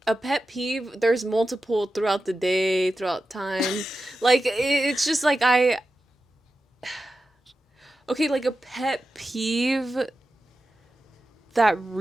a pet peeve, there's multiple throughout the day, throughout time. Like it's just like okay, like a pet peeve that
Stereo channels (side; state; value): both; normal; correlation 0.92